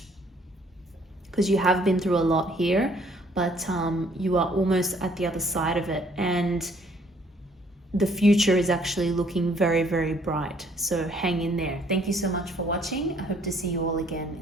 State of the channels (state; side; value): normal; both; correlation 0.62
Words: because you have been through a lot here, but you are almost at the other side of it, and the future is actually looking very, very bright. So hang in there. Thank you so much for watching. I hope to see you all again